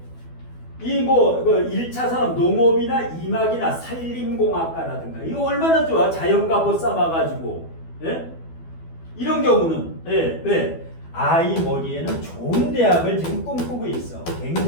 이 뭐 1차 산업 농업이나 임학이나 산림공학과라든가 이거 얼마나 좋아. 자연과보 쌓아가지고. 예? 이런 경우는 예, 왜? 아이 머리에는 좋은 대학을 지금 꿈꾸고 있어.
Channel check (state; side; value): late; right; 12 ms